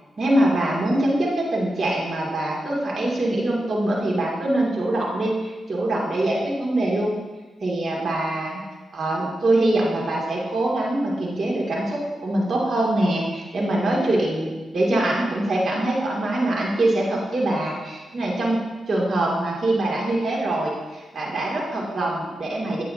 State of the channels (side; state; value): both; normal; correlation 0.89